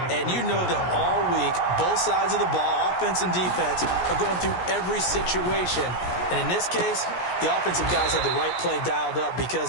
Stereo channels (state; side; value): late; right; 17 ms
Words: And you know that all week, both sides of the ball, offense and defense, are going through every situation. And in this case, the offensive guys had the right play dialed up because